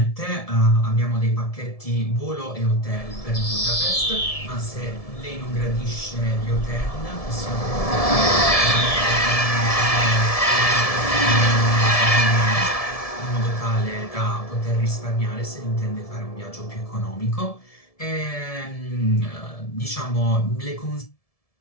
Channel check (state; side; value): late; right; 1.7 ms